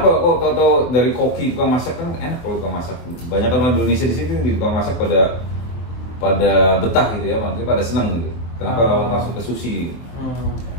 kok tau dari koki tukang masak kan enak kalau tukang masak. Banyak orang Indonesia di sini di tukang masak pada betah gitu ya, maksudnya pada senang gitu. Kenapa langsung ke sushi?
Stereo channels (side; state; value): right; late; 24 ms